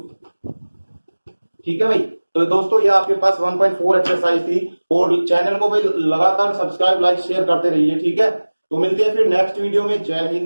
ठीक है भाई। तो दोस्तों ये आपके पास 1.4 एक्सरसाइज थी, और चैनल को भाई लगातार सब्सक्राइब लाइक शेयर करते रहिए, ठीक है। तो मिलते हैं फिर नेक्स्ट वीडियो में। जय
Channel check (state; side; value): inverted; both; correlation -1.00